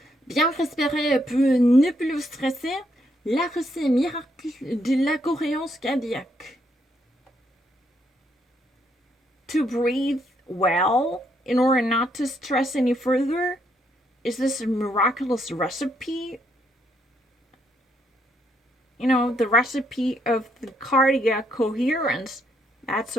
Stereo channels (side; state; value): both; normal; correlation 0.74